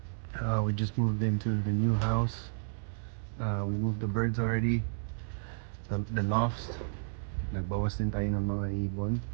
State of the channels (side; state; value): left; silent; digital silence